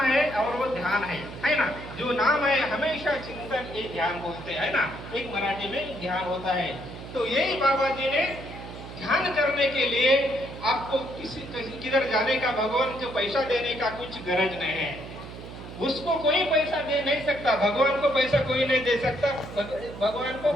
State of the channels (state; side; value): noise; right; hum, 12 dB below the sound